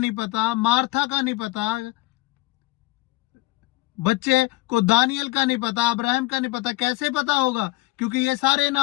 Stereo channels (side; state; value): right; quieter; 20.9 dB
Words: पता, मार्था का नहीं पता, बच्चे को दानियल का नहीं पता, अब्राहम का नहीं पता। कैसे पता होगा? क्योंकि ये सारे